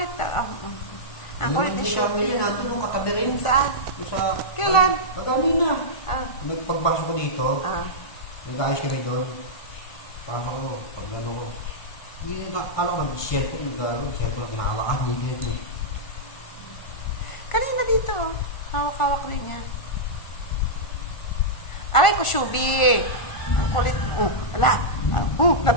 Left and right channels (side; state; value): right; late; 1.5 ms